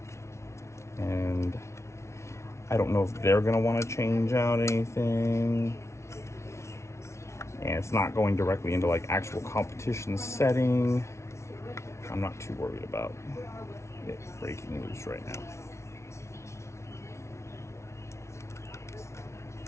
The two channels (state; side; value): late; right; 0.13 ms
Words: and I don't know if they're going to want to change out anything, and it's not going directly into like actual competition setting, I'm not too worried about it breaking loose right now.